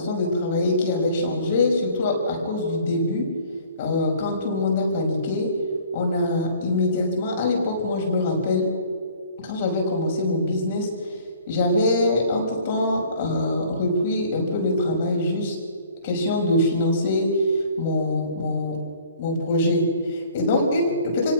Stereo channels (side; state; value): both; inverted; correlation -0.54